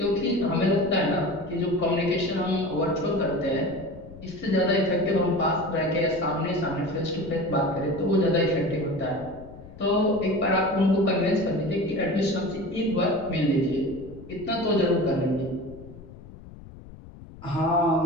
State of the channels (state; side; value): noise; left; rumble, 17 dB below the sound